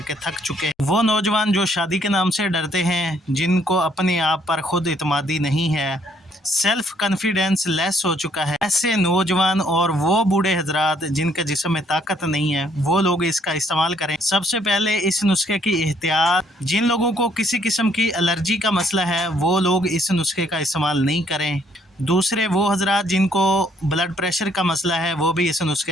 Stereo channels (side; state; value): both; normal; correlation 0.67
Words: थक चुके हैं। वो नौजवान जो शादी के नाम से डरते हैं, जिनको अपने आप पर खुद इत्मीनान नहीं है, सेल्फ कॉन्फिडेंस लेस हो चुका है, ऐसे नौजवान और वो बूढ़े हजरात जिनके जिस्म में ताकत नहीं है, वो लोग इसका इस्तेमाल करें। सबसे पहले इस नुस्खे की एहतियात, जिन लोगों को किसी किस्म की एलर्जी का मसला है वो लोग इस नुस्खे का इस्तेमाल नहीं करें। दूसरे वो हजरात जिनको ब्लड प्रेशर का मसला है वो भी इस